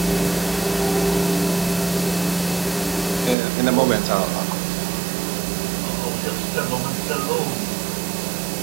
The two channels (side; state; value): left; drops out; at 3.4 s